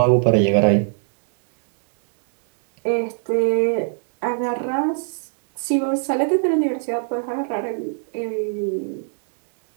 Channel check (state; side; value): silent; left; digital silence